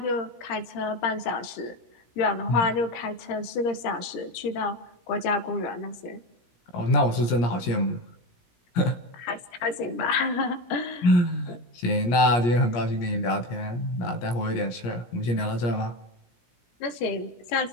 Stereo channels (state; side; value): late; right; 17 ms